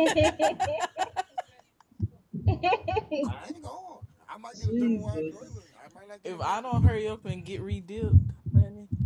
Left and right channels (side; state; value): both; identical; correlation 1.00